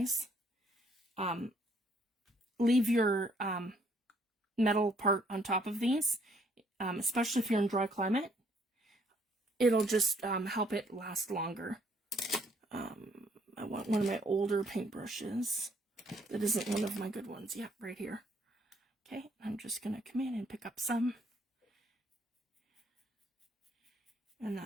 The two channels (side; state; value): both; normal; correlation 0.66